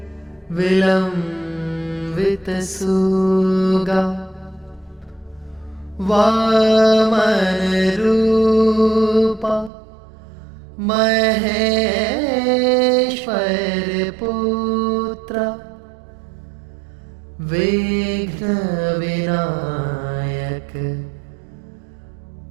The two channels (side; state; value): left; drops out; at 9.7 s